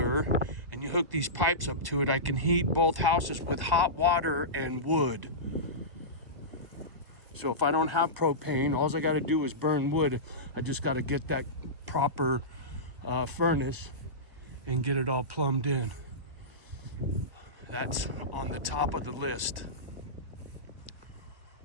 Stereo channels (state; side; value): late; left; 1.1 ms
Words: and you hook these pipes up to it, I can heat both houses with hot water and wood. So if I don't have propane, all I got to do is burn wood. I just got to get that proper furnace and get it all plumbed in. That's on the top of the list.